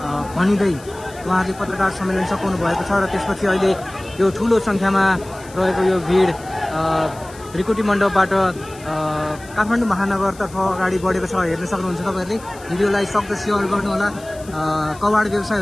भनिँदै उहाँले पत्रकार सम्मेलन सघाउनु भएको छ। र त्यसपछि अहिले यो ठुलो सङ्ख्यामा रहेको यो भिड भ्रिकुटी मण्डपबाट काठमाडौँ महानगरतर्फ अगाडि बढेको छ। हेर्न सक्नुहुन्छ तपाईँहरूले। भिडियोलाई सक्दो सेयर गर्नुहोला। कबाड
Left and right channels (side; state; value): left; noise; hiss, 21 dB below the sound